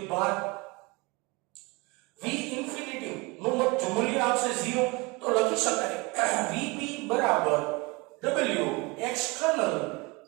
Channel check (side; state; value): left; quieter; 26.2 dB